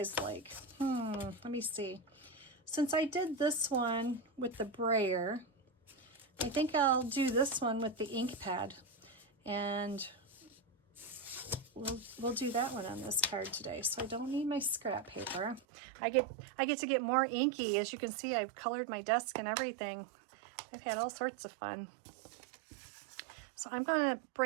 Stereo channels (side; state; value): left; drops out; at 15.6 s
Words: like? Let me see. Since I did this one with the brayer, I think I'll do this one with the ink pad, and we'll do that one on this card today. So I don't need my scrap paper. I get to get more inky. As you can see, I've colored my desk and everything. I've had all sorts of fun. So I'm going to